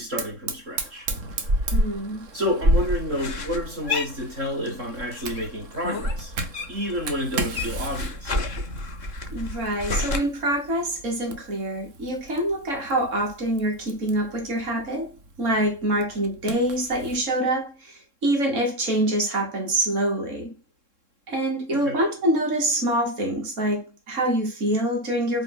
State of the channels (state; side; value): late; left; 3.7 ms